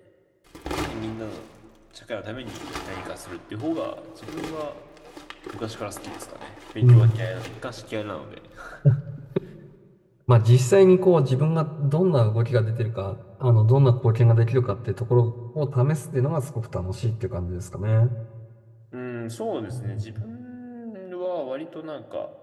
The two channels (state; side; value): identical; both; correlation 1.00